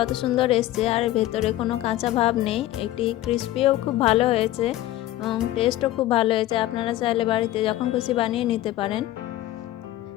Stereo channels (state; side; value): quieter; right; 14.8 dB